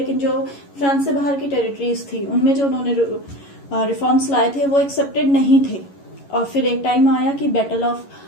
जो फ्रांस से बाहर की टेरिटरीज थी उनमें जो उन्होंने रिफॉर्म्स लाए थे वो एक्सेप्टेड नहीं थे। और फिर एक टाइम आया कि बैटल ऑफ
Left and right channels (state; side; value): late; right; 11 ms